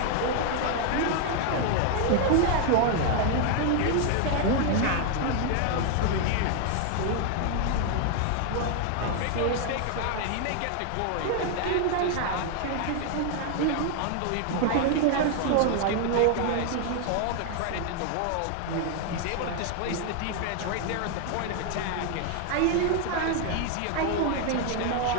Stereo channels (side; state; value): both; different; correlation 0.00